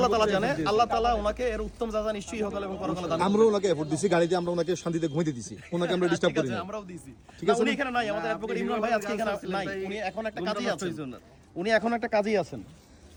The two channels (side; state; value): both; identical; correlation 1.00